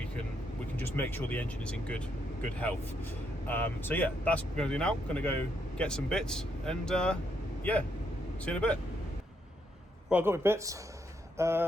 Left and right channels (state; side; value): normal; both; correlation 0.76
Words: can just make sure the engine is in good health. So yeah, that's what we're going to do now. Going to go get some bits, and yeah, see you in a bit. Right, I got my bits.